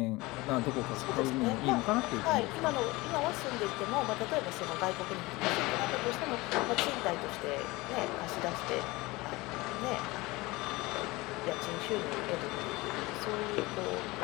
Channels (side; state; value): right; quieter; 21.9 dB